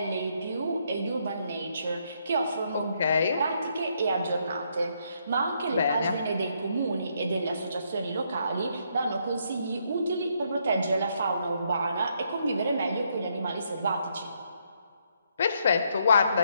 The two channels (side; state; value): both; inverted; correlation -0.74